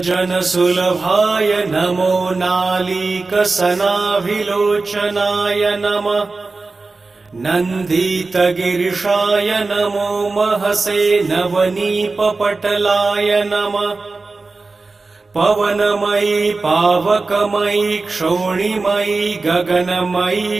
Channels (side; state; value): left; quieter; 3.7 dB